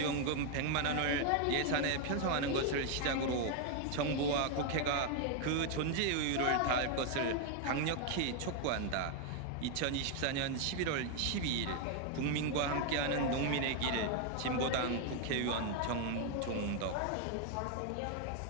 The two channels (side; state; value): both; different; correlation 0.01